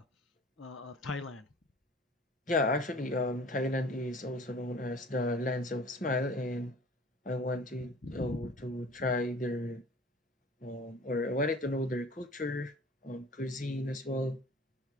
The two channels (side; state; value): both; normal; correlation 0.46